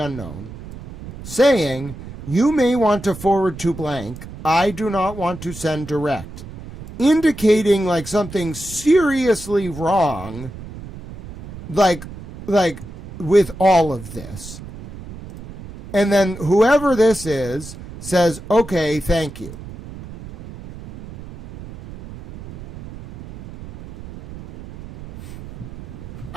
saying, you may want to forward to blank. I do not want to send direct. Indicating like something seriously wrong, like with all of this. And then whoever this is says, okay, thank you.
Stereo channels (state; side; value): noise; right; rumble, 14 dB below the sound